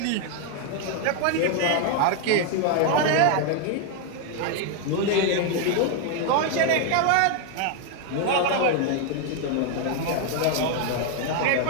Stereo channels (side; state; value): both; different; correlation 0.00